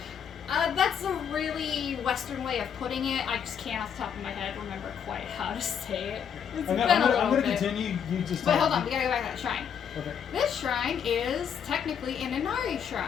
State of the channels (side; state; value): right; quieter; 7.9 dB